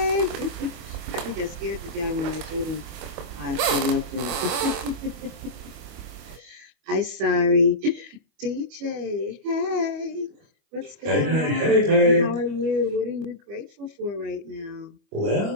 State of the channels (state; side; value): late; left; 25 ms